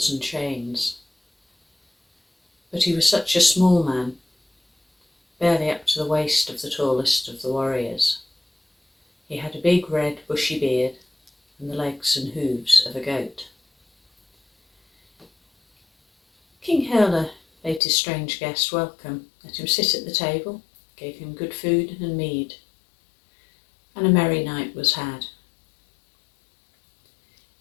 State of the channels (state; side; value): drops out; right; at 17.8 s